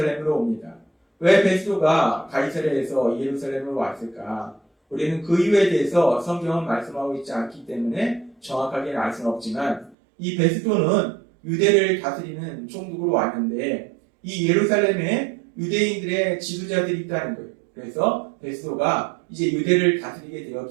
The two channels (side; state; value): left; drops out; at 10.0 s